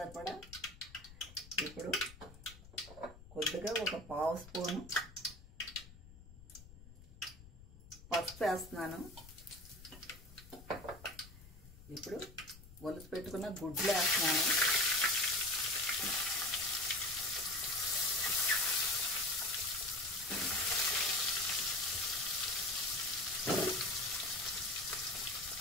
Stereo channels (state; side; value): noise; left; rumble, 18 dB below the sound